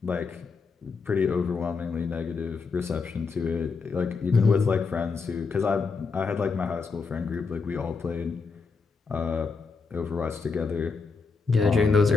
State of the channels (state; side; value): quieter; right; 4.7 dB